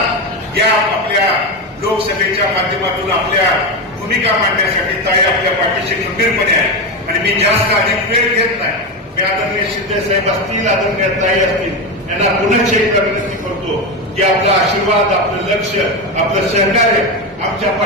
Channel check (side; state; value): both; normal; correlation 0.15